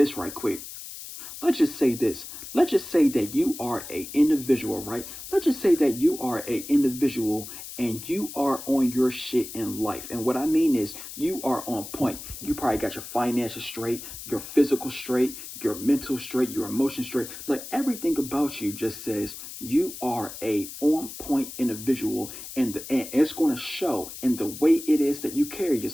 right quick. Let's just say this. Let's just say that you are a individual, right? Let's just say that you are a individual and you are on your shit in life. And what I mean is you are on point. You probably got your finances straight, your physical straight, your mental straight, your emotions straight. Like everything about you just says you are a on point individual and it's going to show in the way it is that you carry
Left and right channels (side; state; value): left; noise; hiss, 11 dB below the sound